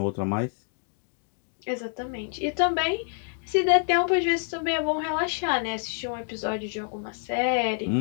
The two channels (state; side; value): silent; right; 60 dB below the other